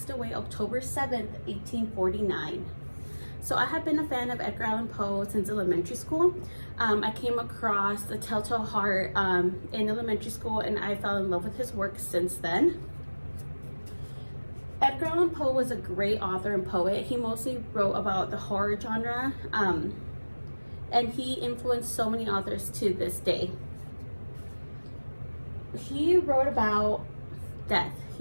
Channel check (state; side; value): inverted; both; correlation -1.00